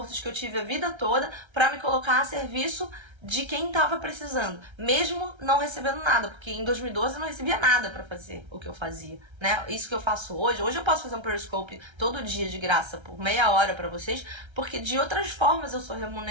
que eu tive a vida toda para me colocar a serviço de quem estava precisando, mesmo não recebendo nada, porque em 2012 eu não recebia nada para fazer o que eu fazia, né? Isso que eu faço hoje eu posso fazer um Periscope todo dia de graça por meia hora para vocês, porque de outras formas eu sou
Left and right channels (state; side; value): late; left; 1.3 ms